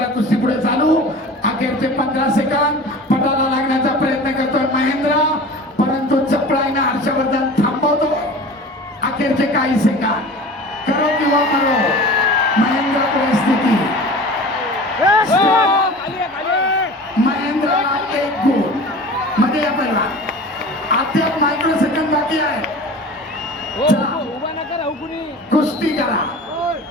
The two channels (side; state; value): both; normal; correlation 0.38